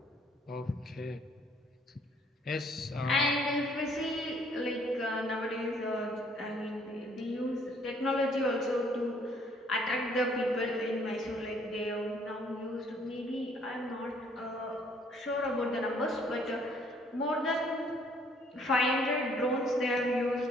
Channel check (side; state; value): both; normal; correlation 0.63